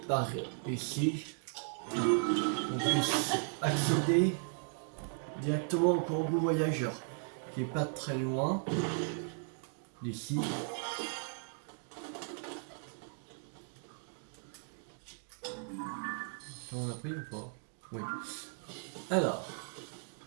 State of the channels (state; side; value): silent; left; 54 dB below the other